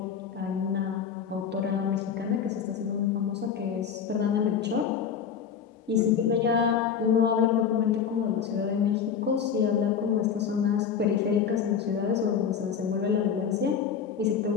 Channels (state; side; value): quieter; right; 7.2 dB